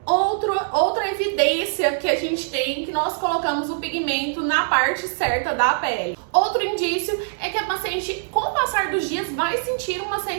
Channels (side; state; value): left; silent; digital silence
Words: Outra evidência que a gente tem que nós colocamos o pigmento na parte certa da pele. Outro indício é que a paciente, com o passar dos dias, vai sentir uma